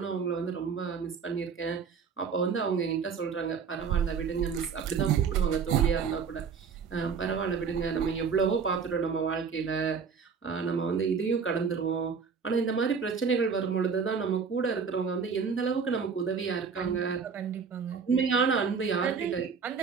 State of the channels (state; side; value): quieter; left; 6.0 dB